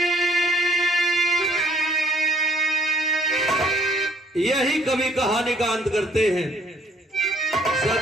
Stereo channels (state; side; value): normal; both; correlation 0.62